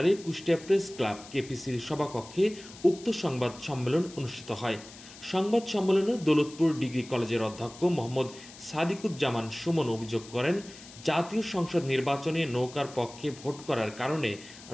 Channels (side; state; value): left; noise; hiss, 18 dB below the sound